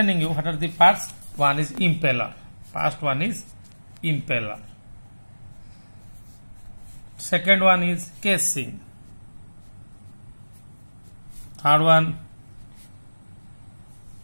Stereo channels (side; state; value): both; inverted; correlation -1.00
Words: you what are the parts. One is impeller. First one is impeller. Second one is casing. Third one,